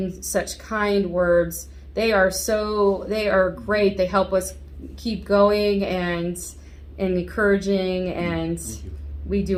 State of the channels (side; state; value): both; identical; correlation 1.00